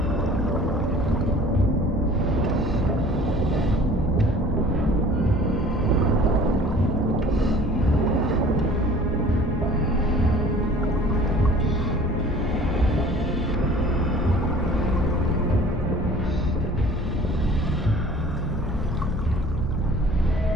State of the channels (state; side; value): normal; both; correlation 0.48